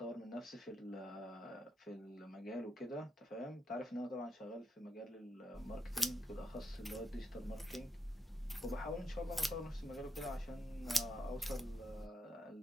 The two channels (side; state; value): both; normal; correlation 0.82